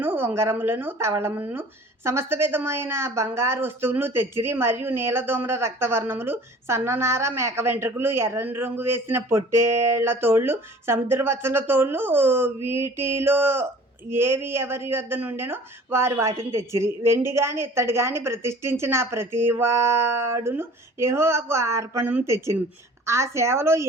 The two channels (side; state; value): both; normal; correlation 0.47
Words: ఉంగరములను, తవళములను, సమస్త విధమైన బంగారు వస్తువులను తెచ్చిరి. మరియు నీలదోమ్ర రక్తవర్ణములు, సన్ననార, మేక వెంట్రుకలు, ఎర్రని రంగు వేసిన పొట్టేళ్ల తోళ్ళు, సముద్రవత్సల తోళ్ళు, వీటిలో ఏవి ఎవరి యొద్ద నుండెనో వారు వాటిని తెచ్చిరి. వెండి గాని ఇత్తడి గాని ప్రతిష్ఠించిన ప్రతివాడును యెహోవాకు అర్పణము తెచ్చిను. ఆ సేవలో